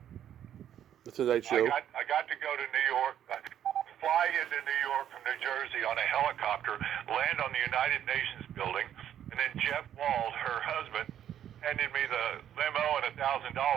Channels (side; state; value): left; quieter; 10.4 dB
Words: Show. I got to go to New York, fly into New York from New Jersey on a helicopter, land on the United Nations building, and then Jeff Wald, her husband, handed me the limo and